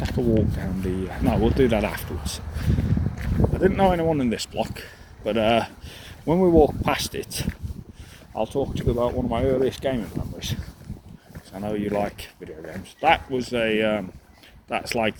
a walk down the, no, we'll do that afterwards. I didn't know anyone in this block, but when we walk past it, I'll talk to you about one of my earliest gaming memories. I know you like video games. That was a, that's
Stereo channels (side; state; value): both; identical; correlation 1.00